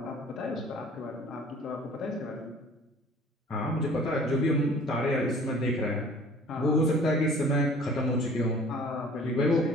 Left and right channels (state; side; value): normal; both; correlation 0.50